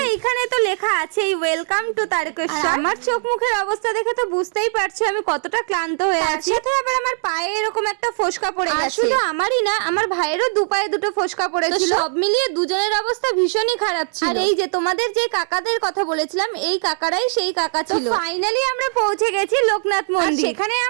এইখানে তো লেখা আছে ওয়েলকাম টু তারকেশ্বর। আমার চোখ মুখের অবস্থা দেখে তো বুঝতেই পারছো আমি কতটা ক্লান্ত হয়ে আছি। সাথে আবার আমার পায়ে এরকম একটা ফোসকা পড়ে গেছে। শুধু আমারই না, আমার ভাইয়েরও দু পায়ে দুটো ফোসকা পড়েছিল। সব মিলিয়ে দুজনের অবস্থা ভীষণই খারাপ ছিল। আর এই যে তোমাদের যে কাকাদের কথা বলেছিলাম, এই কাকারাই সেই কাকা ছিল। ফাইনালি আমরা পৌঁছে গেছি লোকনাথ মন্দির। সেখানে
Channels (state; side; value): silent; left; digital silence